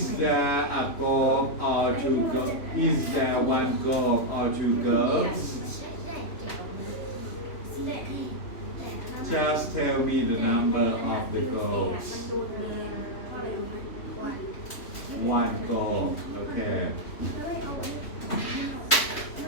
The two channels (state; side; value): late; right; 3.2 ms